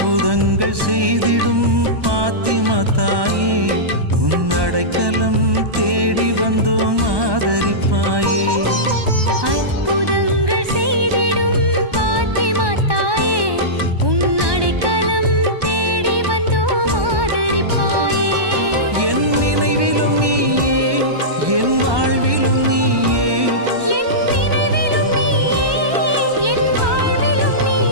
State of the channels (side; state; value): left; late; 1.2 ms